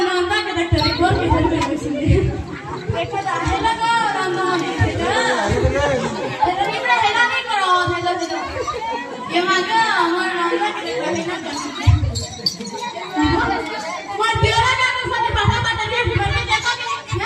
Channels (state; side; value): identical; both; correlation 1.00